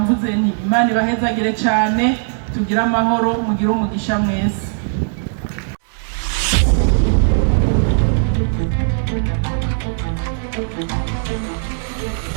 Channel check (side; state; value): left; silent; digital silence